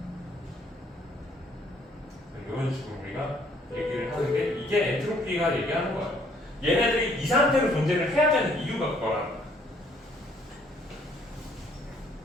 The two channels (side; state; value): both; normal; correlation 0.64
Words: 이런 식으로 우리가 얘기를 하는 게 이게 엔트로피가 얘기하는 거야. 얘네들이 이 상태로 존재를 해야 되는 이유가 그거라는 거야.